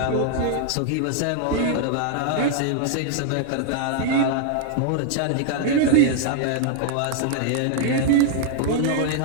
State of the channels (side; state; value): both; different; correlation 0.00